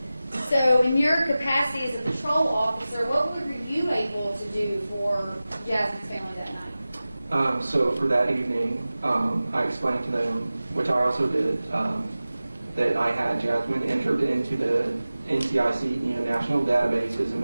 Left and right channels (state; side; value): inverted; both; correlation -0.96